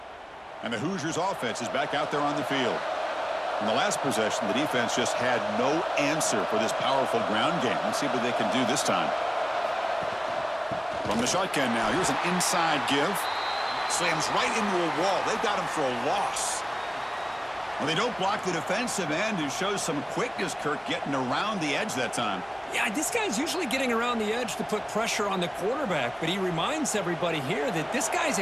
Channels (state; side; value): identical; both; correlation 1.00